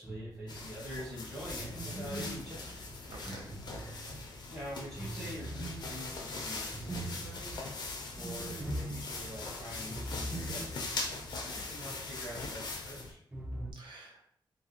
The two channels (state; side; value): normal; both; correlation 0.49